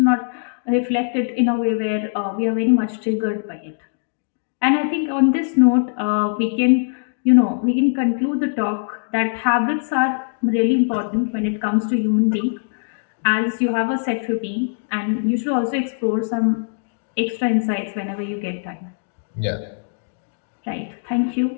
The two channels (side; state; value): right; silent; digital silence